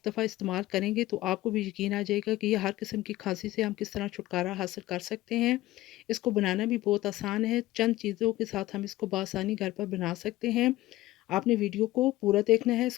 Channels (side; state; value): right; quieter; 16.7 dB